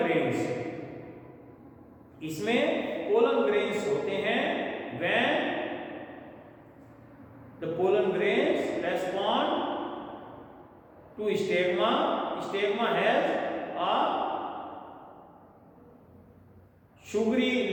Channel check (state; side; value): identical; both; correlation 1.00